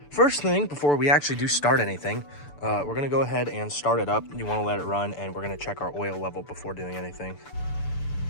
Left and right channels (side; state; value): right; late; 6.9 ms